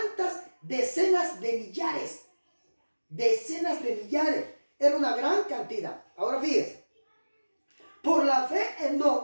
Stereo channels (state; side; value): inverted; both; correlation -1.00